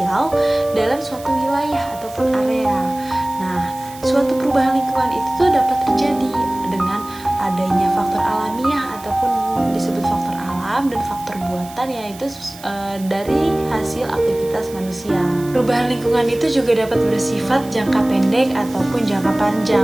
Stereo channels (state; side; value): noise; right; hiss, 19 dB below the sound